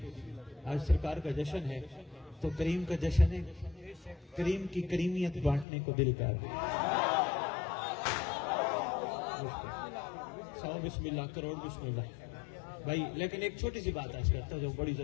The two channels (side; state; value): right; drops out; at 5.7 s